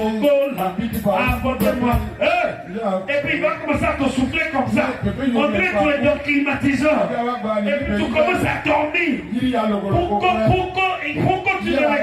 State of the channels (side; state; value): both; identical; correlation 1.00